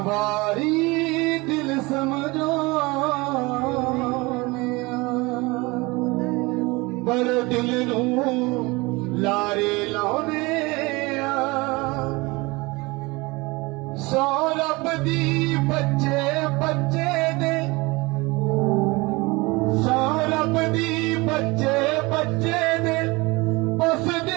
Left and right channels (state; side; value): quieter; left; 24.1 dB